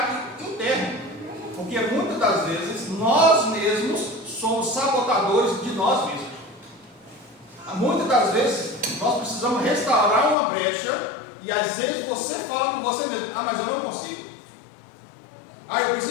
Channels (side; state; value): right; drops out; at 10.4 s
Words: interno, porque muitas das vezes nós mesmos somos sabotadores de nós mesmos. Muitas das vezes nós precisamos restaurar uma brecha e às vezes você fala com você mesmo: mas eu não consigo. Eu